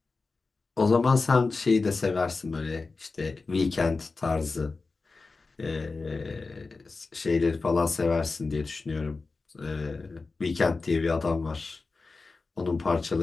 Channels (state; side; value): quieter; right; 3.9 dB